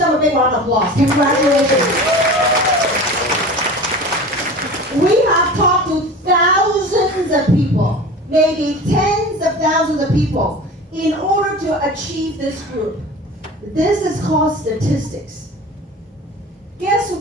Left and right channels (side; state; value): both; normal; correlation 0.36